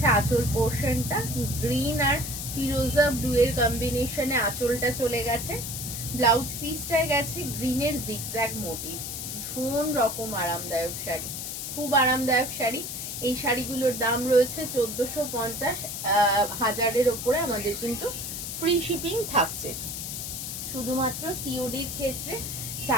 আঁচল পোর্শনটা, গ্রিন আর ফিরোজা ব্লু এর কম্বিনেশনে আঁচলটা চলে গেছে। ব্লাউজ পিসটায় গেছে গ্রিনের জিগজ্যাগ মোটিভ। ভীষণ রকম আরামদায়ক শাড়ি, খুব আরামদায়ক শাড়ি। এই শাড়িগুলোর দাম রয়েছে 1450, 1000-এর ওপরে আমাদের কিন্তু ফ্রি শিপিং থাকছে। শুধুমাত্র সিওডির ক্ষেত্রে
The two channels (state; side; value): noise; left; hiss, 6 dB below the sound